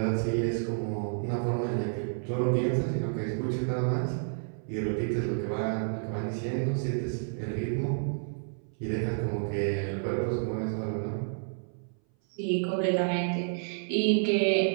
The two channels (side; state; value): left; silent; 58 dB below the other